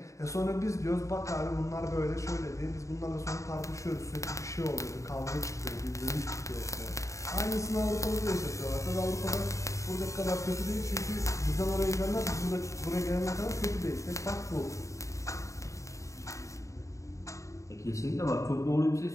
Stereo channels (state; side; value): late; right; 0.15 ms